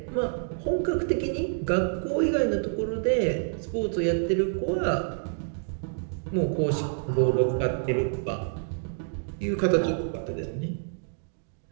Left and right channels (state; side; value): silent; left; digital silence